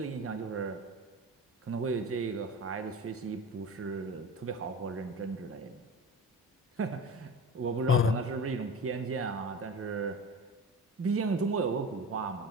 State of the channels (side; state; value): both; normal; correlation 0.32